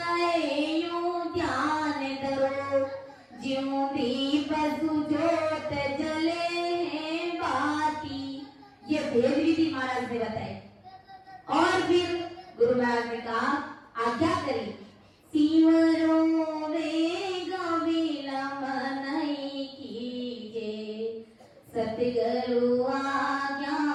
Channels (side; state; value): both; identical; correlation 1.00